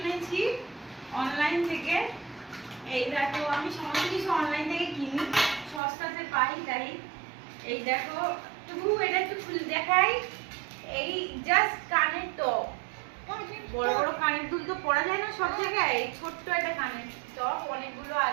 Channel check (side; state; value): left; drops out; at 5.8 s